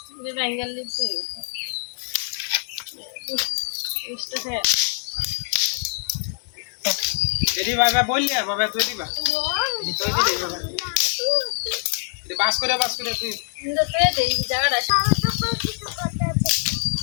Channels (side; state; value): right; silent; digital silence